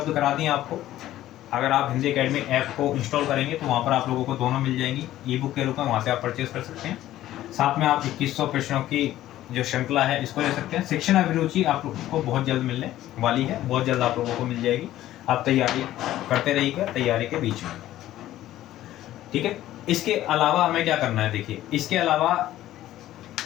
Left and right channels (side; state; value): right; quieter; 13.9 dB